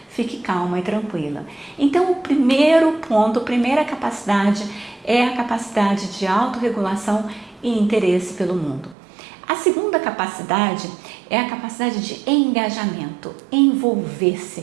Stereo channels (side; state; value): left; drops out; at 9.0 s